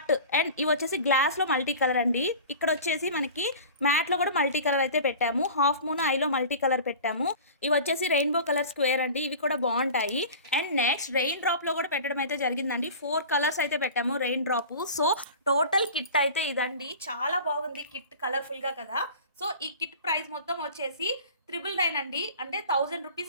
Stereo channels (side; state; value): both; inverted; correlation -0.38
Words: and ఇవి వచ్చేసి గ్లాస్లో మల్టీ కలర్ అండి. ఇక్కడ వచ్చేసి మనకి మ్యాట్లో కూడా మల్టీ కలర్ అయితే పెట్టాము. హాఫ్ మూన్, ఐలో మల్టీ కలర్ పెట్టాము. ఇవి వచ్చేసి రెయిన్బో కలర్ స్క్వేర్ అండి. ఇవి కూడా బాగుంటాయి. అండ్ నెక్స్ట్ రెయిన్ డ్రాప్లో కూడా పెట్టడం అయితే జరిగిందండి. 4 కలర్స్ అయితే పెట్టాము rain drop. So total kit అయితే ఇదండి. చాలా బాగుంది కిట్, కలర్ఫుల్గా కదా. సో ఈ కిట్ ప్రైస్ మొత్తం వచ్చేసి 999 అండి. అంటే 1000